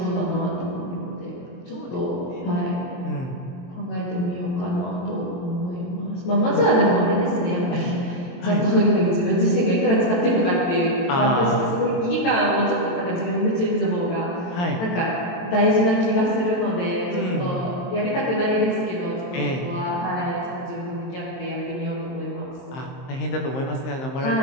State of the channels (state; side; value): late; right; 23 ms